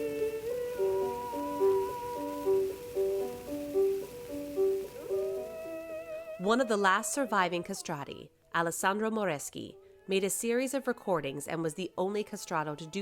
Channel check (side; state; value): both; identical; correlation 1.00